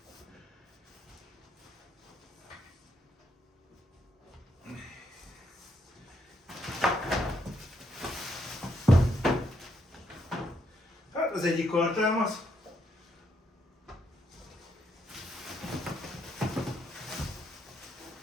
Hát az egyik kartámaz.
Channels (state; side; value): normal; both; correlation 0.76